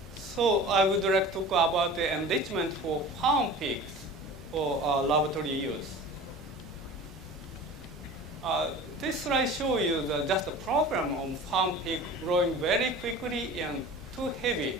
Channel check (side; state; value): both; normal; correlation 0.39